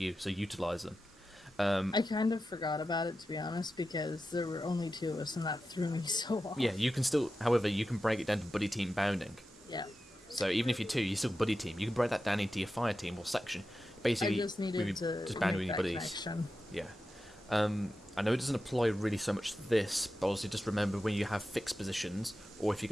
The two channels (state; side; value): normal; both; correlation 0.92